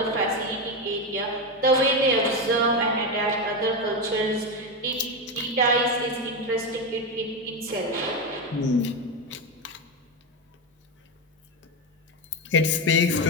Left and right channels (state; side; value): normal; both; correlation 0.12